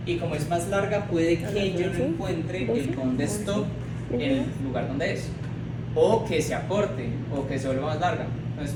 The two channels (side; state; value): both; identical; correlation 1.00